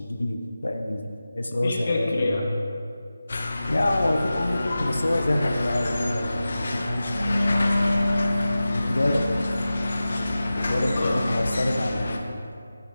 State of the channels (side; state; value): both; inverted; correlation -0.95